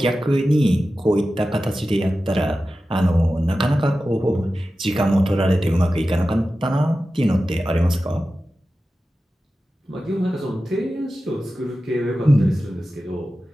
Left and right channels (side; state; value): both; normal; correlation 0.94